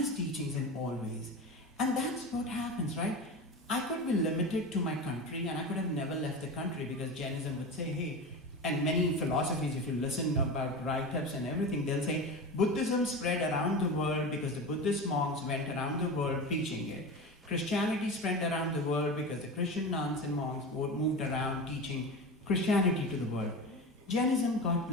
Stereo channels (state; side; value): normal; both; correlation 0.26